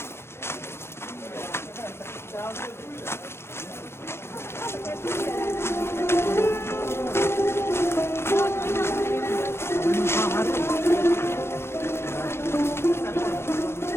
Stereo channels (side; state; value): right; late; 0.12 ms